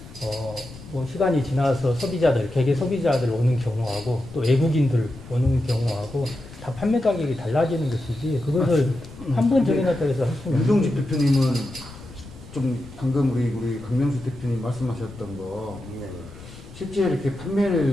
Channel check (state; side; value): noise; left; rumble, 17 dB below the sound